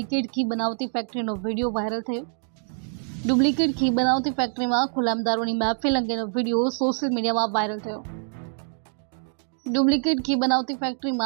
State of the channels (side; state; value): left; silent; 62 dB below the other